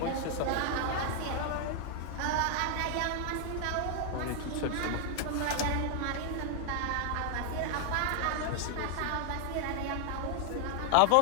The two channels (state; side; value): different; both; correlation 0.00